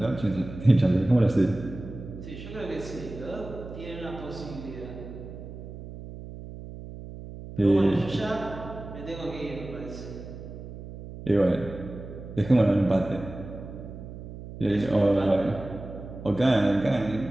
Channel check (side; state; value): right; noise; hum, 12 dB below the sound